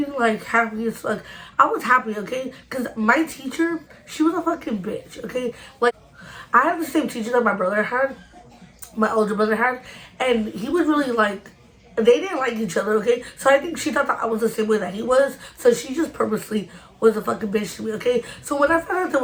like happy as fuck. I was happy, okay? Because my teacher, she was a fucking bitch, okay? Like, I had the same teacher that my brother had, my older brother had, and he was really like, they didn't like each other, okay? So I think she thought that I was the same way that he was, so she just purposely was a fucking bitch to me, okay? So when I found out that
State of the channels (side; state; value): both; identical; correlation 1.00